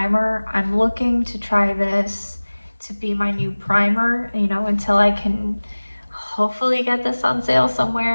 I'm looking to try this to be my new primer, you know, until I can hopefully get this on sale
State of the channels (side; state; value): both; inverted; correlation -1.00